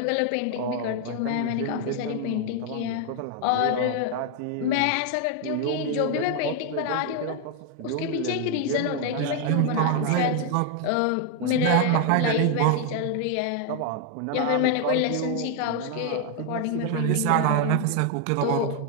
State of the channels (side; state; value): both; different; correlation 0.00